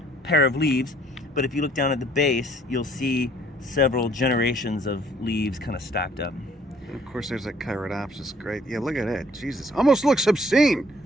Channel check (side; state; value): both; normal; correlation 0.60